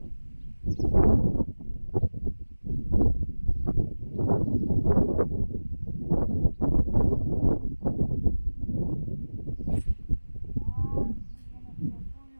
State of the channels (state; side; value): inverted; both; correlation -1.00